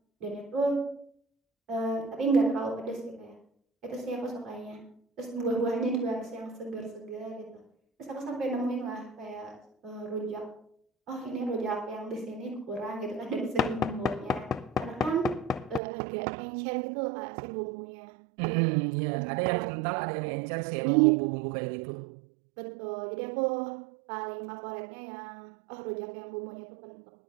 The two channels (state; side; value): drops out; left; at 15.8 s